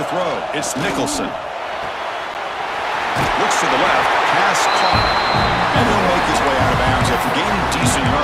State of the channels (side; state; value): both; identical; correlation 1.00